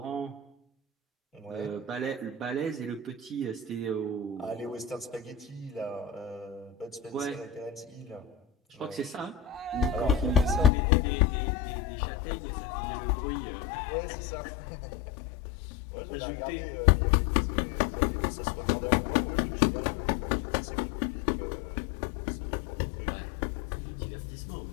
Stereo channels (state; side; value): drops out; right; at 10.7 s